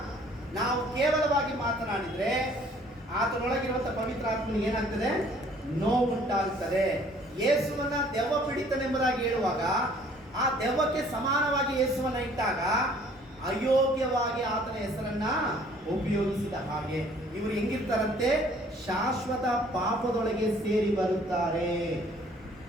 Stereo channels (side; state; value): both; normal; correlation 0.57